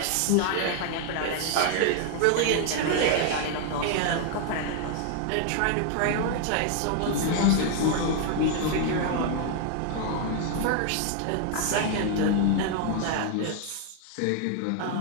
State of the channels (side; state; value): both; different; correlation 0.00